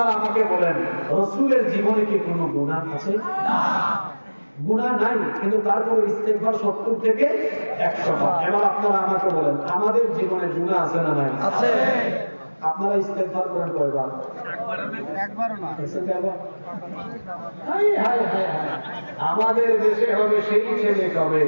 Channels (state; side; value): inverted; both; correlation -1.00